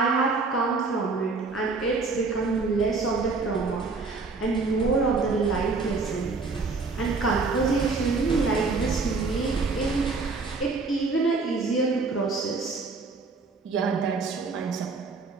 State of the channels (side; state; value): left; quieter; 4.0 dB